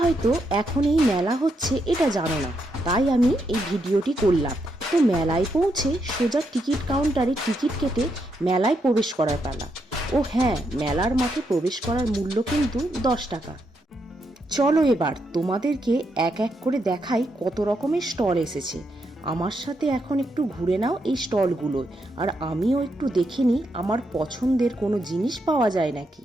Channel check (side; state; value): both; normal; correlation 0.80